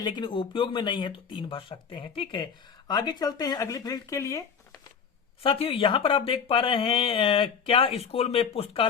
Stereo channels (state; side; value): quieter; right; 6.5 dB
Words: उपयोग में नहीं है तो 3 भर सकते हैं। ठीक है, आगे चलते हैं अगली फील्ड के लिए। साथियों यहां पर आप देख पा रहे हैं क्या स्कूल में